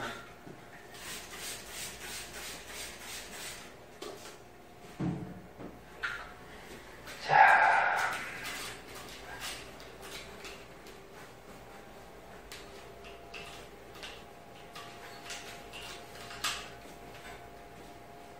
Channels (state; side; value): identical; both; correlation 1.00